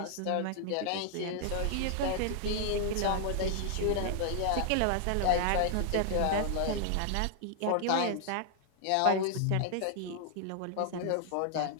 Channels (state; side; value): different; both; correlation 0.00